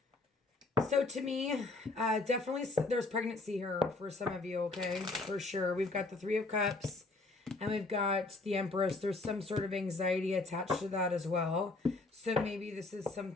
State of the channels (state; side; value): quieter; right; 3.3 dB